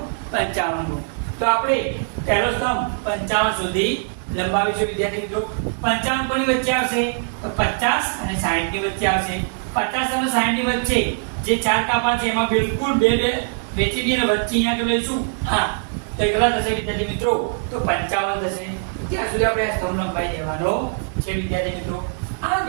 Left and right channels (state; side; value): silent; left; 62 dB below the other